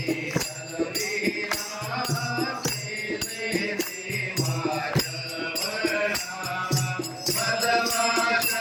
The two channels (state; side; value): identical; both; correlation 1.00